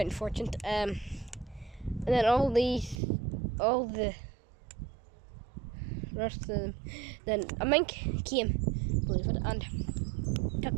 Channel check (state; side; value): drops out; left; at 3.0 s